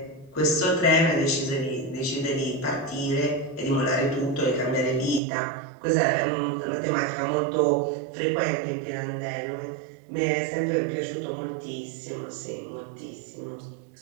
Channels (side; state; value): left; drops out; at 5.2 s